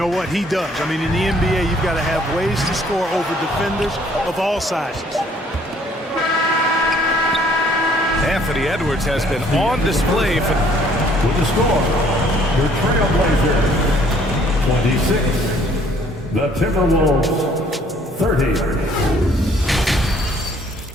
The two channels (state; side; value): normal; both; correlation 0.61